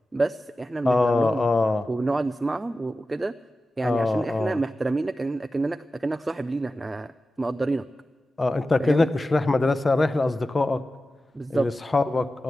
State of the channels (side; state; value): both; normal; correlation 0.93